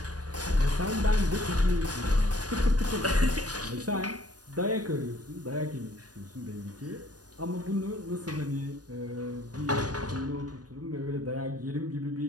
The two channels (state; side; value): late; left; 0.68 ms